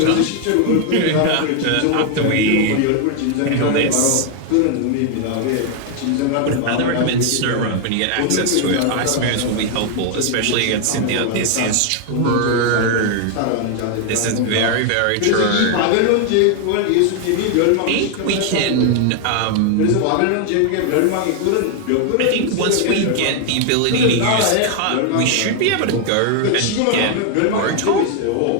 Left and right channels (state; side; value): different; both; correlation 0.00